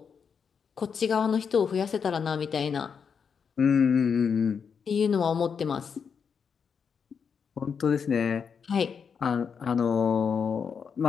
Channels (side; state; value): right; quieter; 6.5 dB